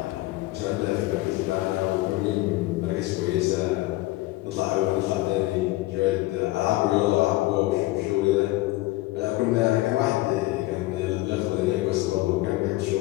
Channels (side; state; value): right; quieter; 18.9 dB